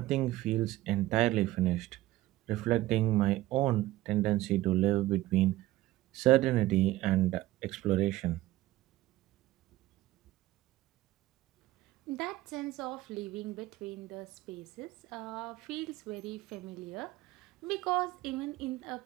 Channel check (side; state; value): left; quieter; 16.7 dB